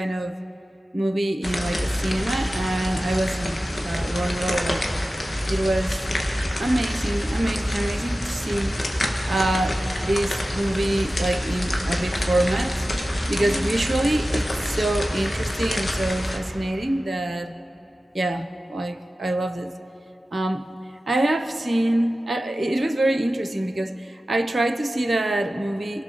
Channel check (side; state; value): both; normal; correlation 0.95